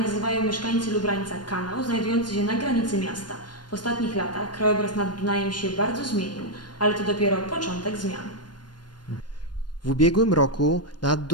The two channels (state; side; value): late; right; 0.71 ms